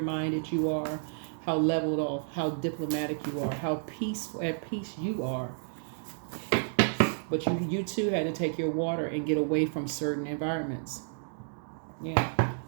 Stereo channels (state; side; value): silent; left; digital silence